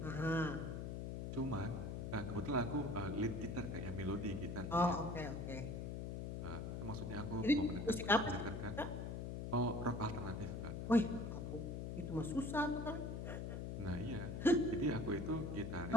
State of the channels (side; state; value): left; noise; hum, 4 dB below the sound